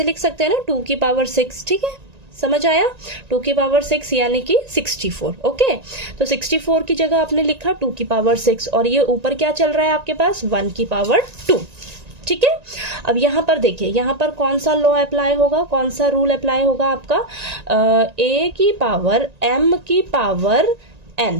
लिख सकते हैं ना, 2 की पावर 6, ठीक है। समझ आया? 2 की पावर 6 यानी कि 64, ओके। तो 64 की जगह आपने लिखा 2 की पावर 6, और ये ऊपर क्या चल रहा है आपके पास? 1 की पावर 2, ठीक है। अब यहाँ पर देखिए, यहाँ पर कौन सा लॉ अप्लाई होगा, कौन सा रूल अप्लाई होगा आपका? a की पावर m की पावर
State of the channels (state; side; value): late; left; 1.9 ms